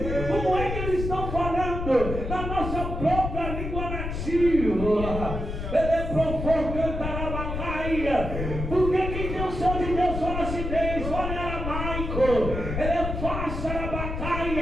Como é que eles estão falando na nossa própria língua nativa? Ele é provocantar a bacaia. Porque quem tem o céu de Deus fala acidez, fala em aramaico. Ele é fácil a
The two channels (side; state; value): left; noise; rumble, 4 dB below the sound